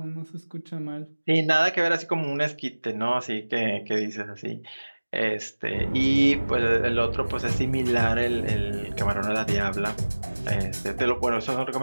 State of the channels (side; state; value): both; inverted; correlation -1.00